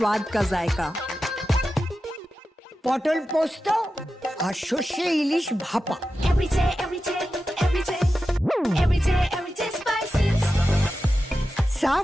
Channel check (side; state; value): both; normal; correlation 0.92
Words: का जायका। পটল পোস্ত আর সর্ষে ইলিশ ভাপা। Every day, every day, every day, every day, every day spices.